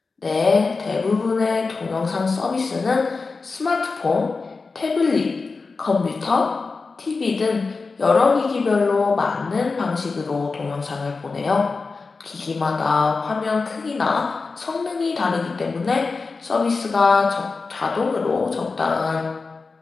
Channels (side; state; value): right; quieter; 4.2 dB